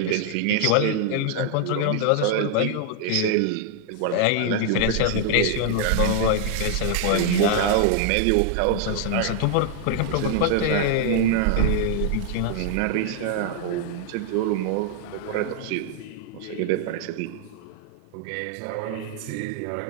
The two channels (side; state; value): both; different; correlation 0.00